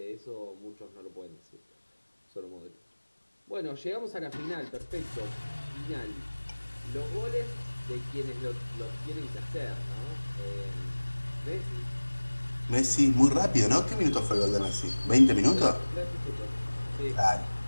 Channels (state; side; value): inverted; both; correlation -1.00